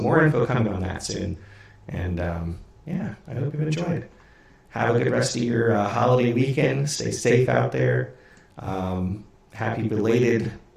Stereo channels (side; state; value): both; identical; correlation 1.00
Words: more info coming on that soon. And yeah, I hope you've enjoyed. Have a good rest of your holiday weekend. Stay safe out there. Happy belated